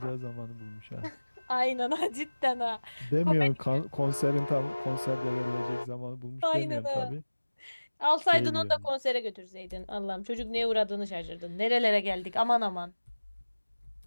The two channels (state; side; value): inverted; both; correlation -1.00